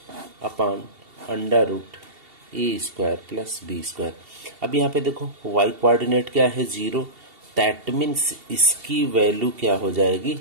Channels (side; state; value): left; late; 2.7 ms